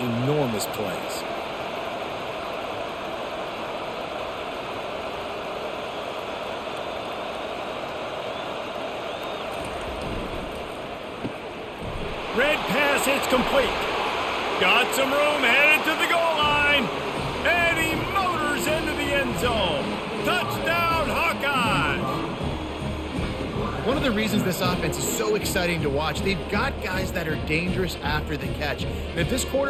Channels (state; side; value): identical; both; correlation 1.00